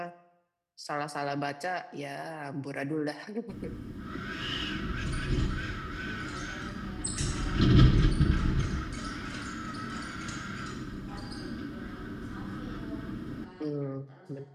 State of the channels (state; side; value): identical; both; correlation 1.00